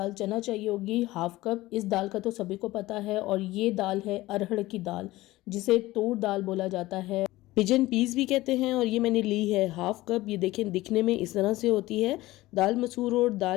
चना चाहिए होगी हाफ कप। इस दाल का तो सभी को पता है, और ये दाल है अरहर की दाल, जिसे तूर दाल बोला जाता है, पिजन पीस भी कहते हैं। और ये मैंने ली है हाफ कप। ये देखें दिखने में इस तरह से होती है। दाल मसूर और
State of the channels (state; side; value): quieter; right; 18.0 dB